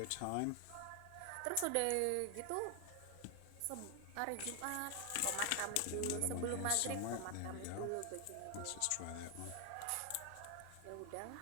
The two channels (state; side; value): different; both; correlation 0.00